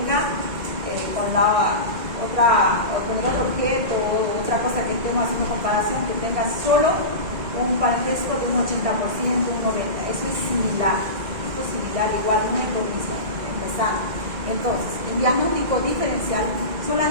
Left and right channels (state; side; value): late; left; 2.1 ms